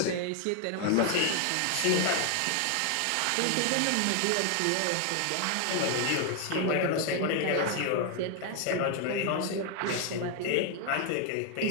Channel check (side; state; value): both; different; correlation 0.01